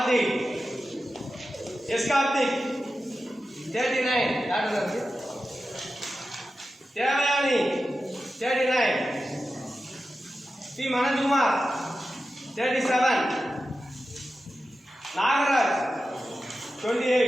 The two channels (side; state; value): both; normal; correlation 0.92